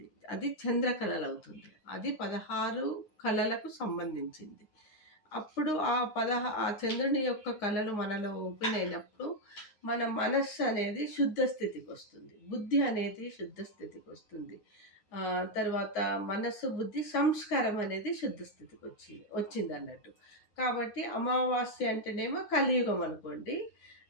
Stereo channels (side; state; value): right; late; 9.7 ms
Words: అది చంద్రకళలు అవుతుంది. అది 16 కళలకు సంబంధించింది. అప్పుడు ఆ చంద్రుని యొక్క కళలు మనలో ఓపెన్ అయినప్పుడు మన మనస్సు అనేది శుద్ధ స్థితికి వస్తుంది. బుద్ధి అనేది శుద్ధ స్థితికి వస్తుంది. తర్వాత మనస్సు, బుద్ధి, సంస్కారం అనేది శుద్ధ స్థితికి వచ్చింది అన్నట్టు. కాబట్టి అమావాస్య అంటేనేమో కలియుగం అనుకోండి.